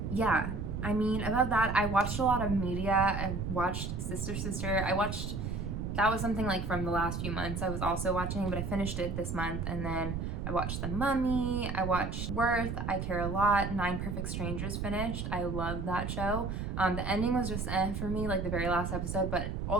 yeah, I mean, above that, I watched a lot of media. I watched Sister. That was something like from the last few months I was also watching, but I finished it this month. And then I watched The Mummy, I watched Worth, I Care a Lot, 9 Perfect Strangers finished. I loved that show. The ending was just for me, like the very last episode, but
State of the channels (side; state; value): right; noise; rumble, 3 dB below the sound